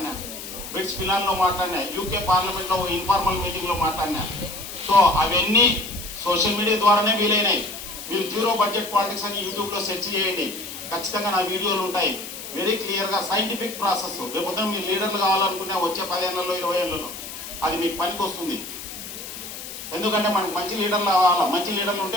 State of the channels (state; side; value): noise; left; hiss, 10 dB below the sound